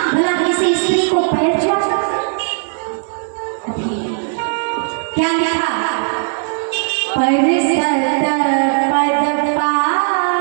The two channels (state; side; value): silent; left; digital silence